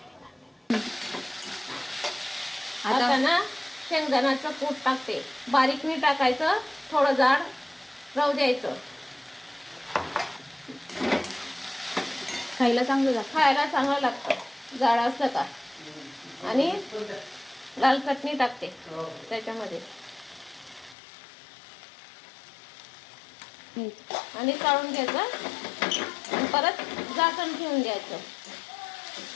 आता ना शेंगदाण्याचं कूट टाकते. बारीक नाही टाकायचं, थोडं जाड राहू द्यायचं. खायला चांगलं लागतं. खायला चांगलं लागतं जाड असतं का. आणि लाल चटणी टाकते त्याच्यामध्ये. आणि काढून घ्यायचं आणि परत झाकण ठेवून द्यायचं.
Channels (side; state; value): right; drops out; at 21.0 s